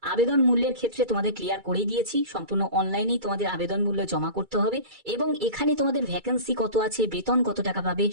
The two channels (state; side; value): late; left; 2.3 ms